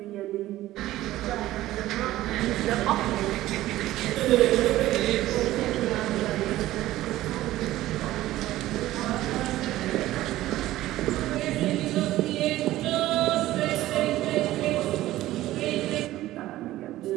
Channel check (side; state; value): left; quieter; 15.5 dB